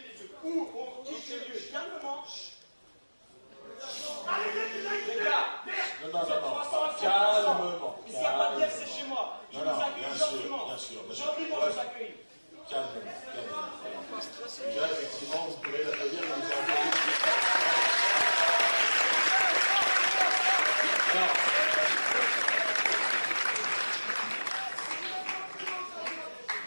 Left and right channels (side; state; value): both; inverted; correlation -1.00